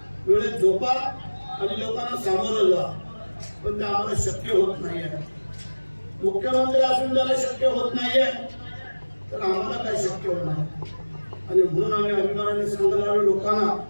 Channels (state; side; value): inverted; both; correlation -1.00